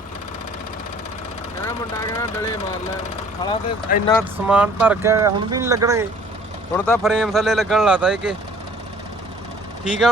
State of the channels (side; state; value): both; normal; correlation 0.54